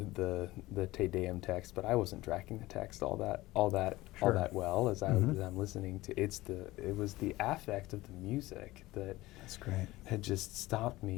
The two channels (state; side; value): quieter; right; 18.5 dB